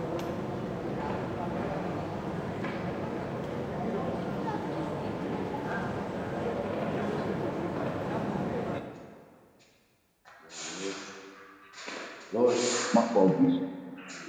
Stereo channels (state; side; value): identical; both; correlation 1.00